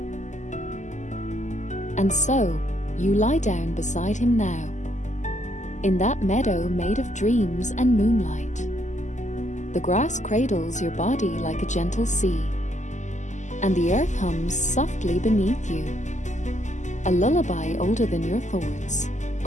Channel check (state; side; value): late; right; 0.34 ms